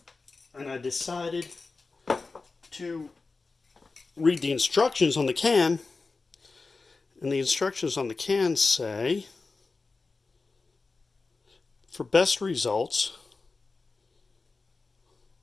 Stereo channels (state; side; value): quieter; right; 3.9 dB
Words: and I decided to read the instructions on the can, and the instructions on the can say, for best results,